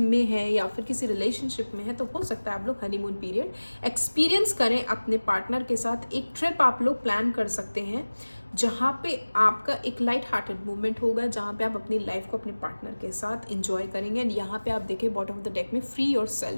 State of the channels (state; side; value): inverted; both; correlation -1.00